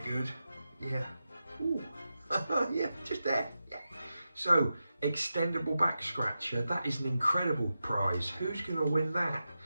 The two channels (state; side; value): inverted; both; correlation -0.91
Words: Yeah, ooh, yeah, just there, yeah. So, extendable back scratcher, that is an incredible prize. Who's gonna win that?